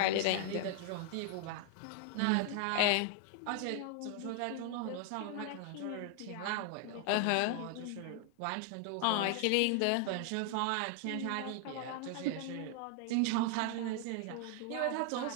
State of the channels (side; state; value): both; different; correlation 0.00